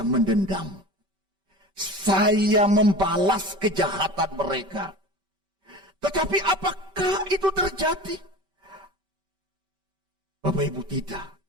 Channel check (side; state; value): left; late; 5.2 ms